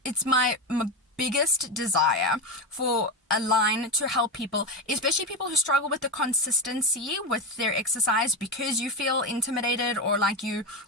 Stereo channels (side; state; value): both; normal; correlation 0.16